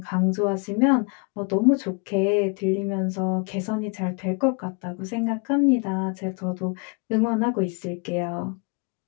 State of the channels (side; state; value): right; quieter; 32.6 dB